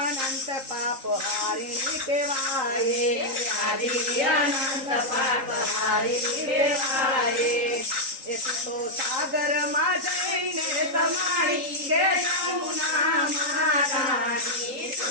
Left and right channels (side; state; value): left; late; 3.8 ms